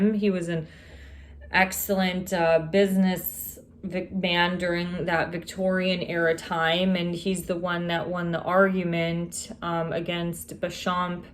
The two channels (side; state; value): both; identical; correlation 1.00